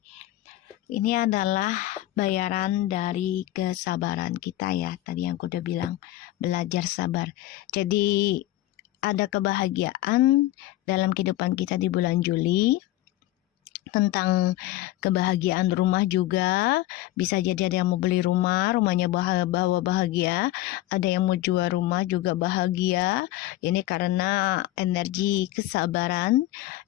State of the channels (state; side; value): quieter; right; 15.7 dB